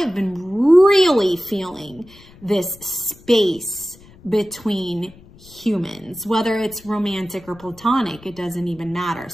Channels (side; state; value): left; noise; rumble, 23 dB below the sound